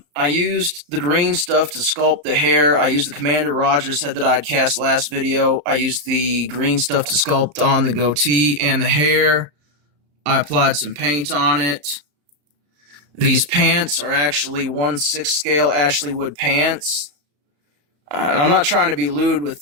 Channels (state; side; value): late; left; 34 ms